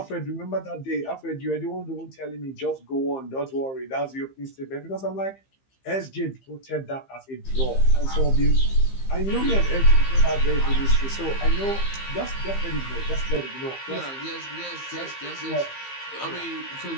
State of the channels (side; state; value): right; late; 15 ms